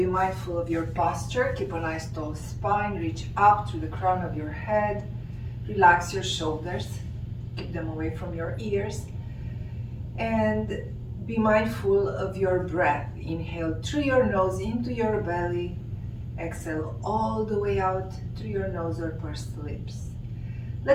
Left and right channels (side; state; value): both; identical; correlation 1.00